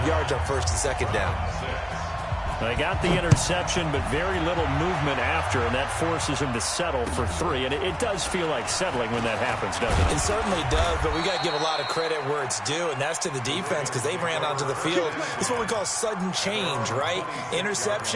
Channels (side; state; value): both; identical; correlation 1.00